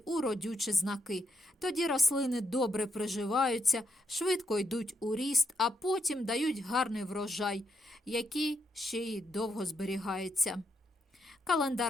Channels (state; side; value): normal; both; correlation 0.78